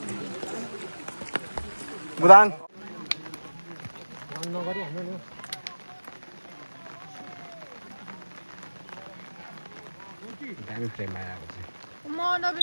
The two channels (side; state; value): both; inverted; correlation -1.00